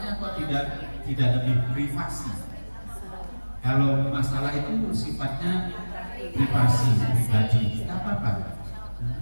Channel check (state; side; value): inverted; both; correlation -1.00